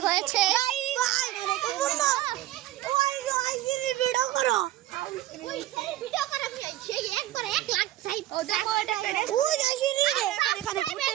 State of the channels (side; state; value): left; quieter; 14.7 dB